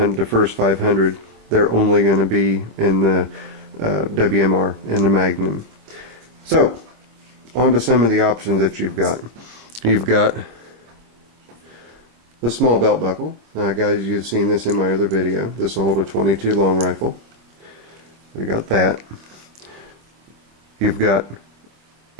500, they're only going to be in the WMR, in the Magnum. So, on to some of the options that you've got. You've got the small belt buckle. Now guys, you've seen this in my other video. This will hold a 22 long rifle. We got that. You've got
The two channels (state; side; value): late; left; 25 ms